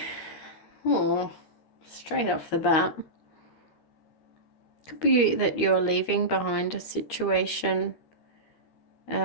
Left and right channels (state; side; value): late; right; 13 ms